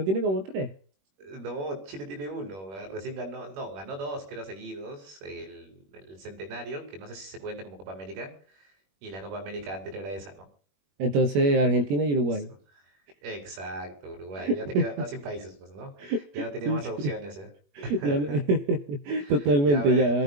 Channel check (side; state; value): left; late; 21 ms